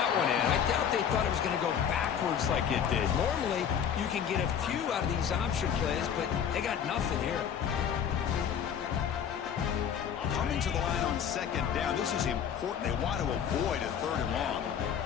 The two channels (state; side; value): quieter; right; 8.2 dB